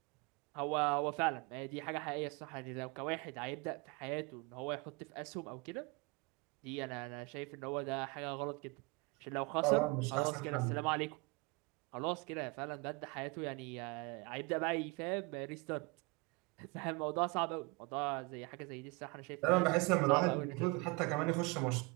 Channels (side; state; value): left; quieter; 27.2 dB